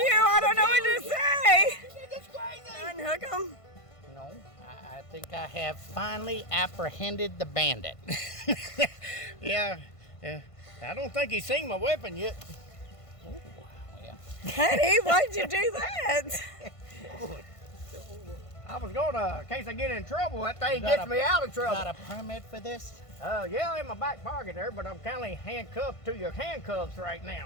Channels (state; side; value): late; right; 1.5 ms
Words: I don't know what to say. This is crazy. Unhook him. No, I think I have finally apprehended the bandit. Yeah. I don't think he's seen my weapon yet. Well, Honey, why'd you do that? I was gonna, in case I get in trouble, that thing Got gets a- me out of got trouble. a permit for this? Yeah, in my back pocket there, but I'm kind of handcuffed to your handcuffs right